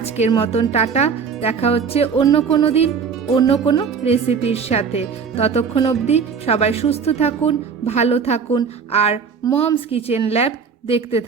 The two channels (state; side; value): quieter; left; 6.1 dB